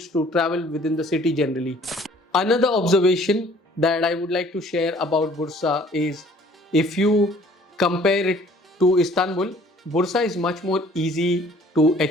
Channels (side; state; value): both; normal; correlation 0.55